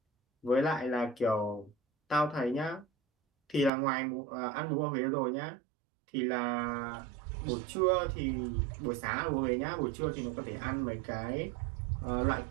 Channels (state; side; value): drops out; left; at 3.7 s